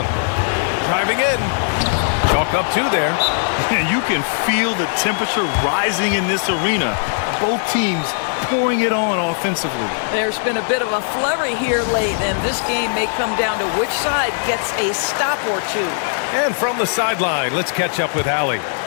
Driving in. Chalk up 2 there. And you can feel the temperature rising in this arena. Both teams pouring it on offensively. There's been a bit of a flurry here late, and this game may come down to which side gets a stop or two. And from the sideline, let's catch up with Allie.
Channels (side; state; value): right; silent; digital silence